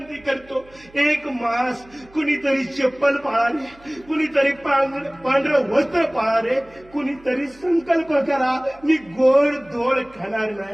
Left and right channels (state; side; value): noise; right; hum, 26 dB below the sound